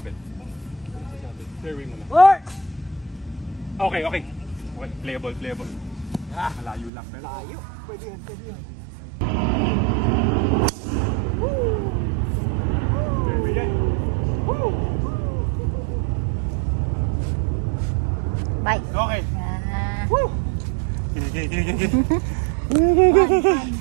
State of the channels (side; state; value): left; drops out; at 6.9 s